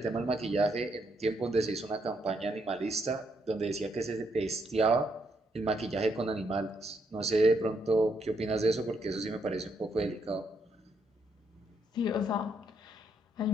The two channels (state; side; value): normal; both; correlation 0.76